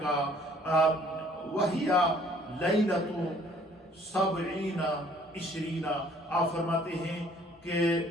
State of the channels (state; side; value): normal; both; correlation 0.59